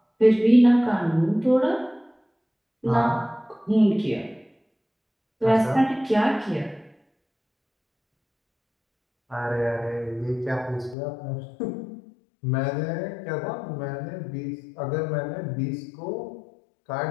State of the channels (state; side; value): drops out; right; at 11.0 s